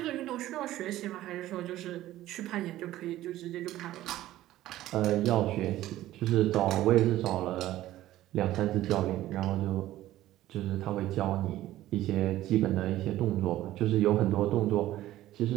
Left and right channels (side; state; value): left; quieter; 14.7 dB